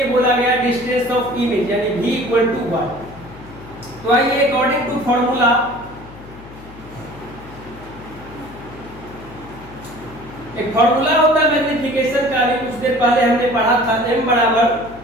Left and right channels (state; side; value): noise; left; hum, 18 dB below the sound